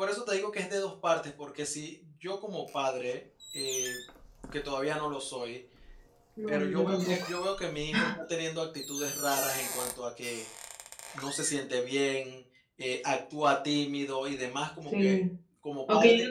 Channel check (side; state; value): both; identical; correlation 1.00